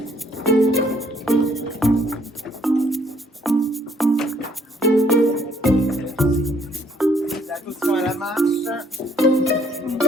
Attention à la marche.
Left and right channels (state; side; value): normal; both; correlation 0.64